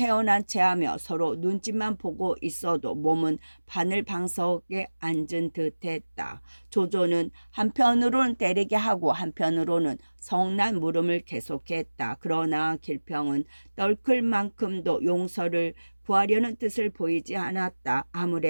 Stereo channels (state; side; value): inverted; both; correlation -1.00